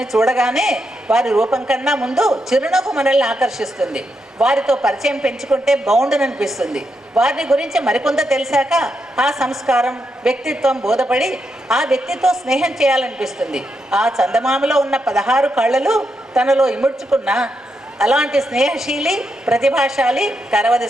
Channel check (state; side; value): normal; both; correlation 0.83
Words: చూడగానే వారి రూపం కన్నా ముందు చిరునవ్వు మనల్ని ఆకర్షిస్తుంది. వారితో పరిచయం పెంచుకుంటే బాగుండుననిపిస్తుంది. వారిని గురించి మరికొంత తెలిసాక ఆ సంస్కారం, వ్యక్తిత్వం బోధపడి ఆ వ్యక్తితో స్నేహం చేయాలనిపిస్తుంది. ఆ చందమామలో ఉన్న 16 కళ్ళలు తనలో ఇముడ్చుకున్న అలాంటి స్నేహశీలి, ప్రతిభాశాలి కరవది